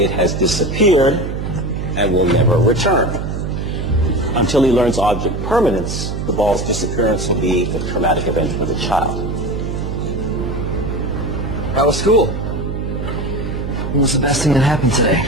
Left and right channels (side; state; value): right; noise; hum, 4 dB below the sound